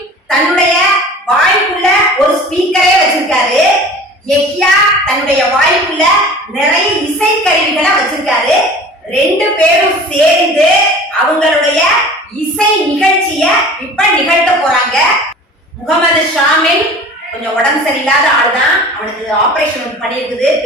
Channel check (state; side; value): normal; both; correlation 0.42